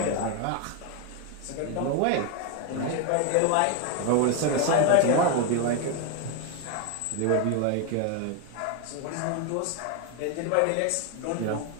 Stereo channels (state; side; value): different; both; correlation 0.01